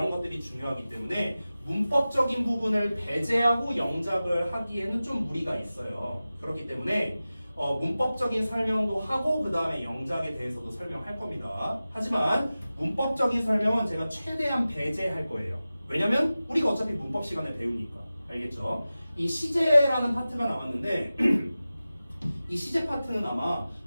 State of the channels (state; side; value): inverted; both; correlation -0.96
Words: 것들이 중요하기 때문에 문법적인 부분을 배제하고 영작을 하기에는 좀 무리가 있어요. 그렇기 때문에 문법적인 설명도 하고 그 다음에 영작에 대해서도 설명할 겁니다. 하지만 문법적인 설명은 제가 최대한 배제할 거예요. 왜냐면 우리가 어차피 문법 시간에 배우니까. 알겠죠? 이 시제라는 파트가 나왔는데 이 시제 파트는 아마